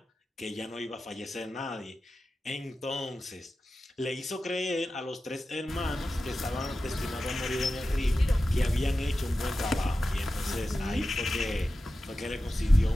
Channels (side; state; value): both; normal; correlation 0.93